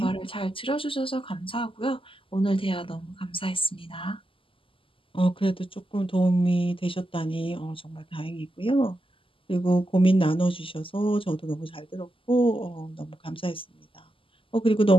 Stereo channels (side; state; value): right; late; 0.25 ms